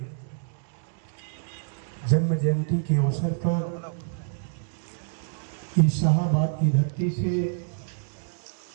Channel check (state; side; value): silent; left; digital silence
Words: जन्म जयंती के अवसर पर इस शाहाबाद की धरती से,